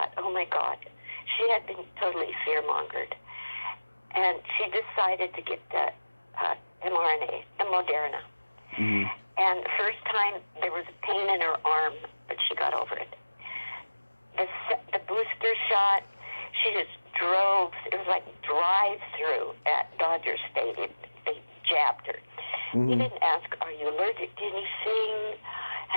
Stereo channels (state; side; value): inverted; both; correlation -1.00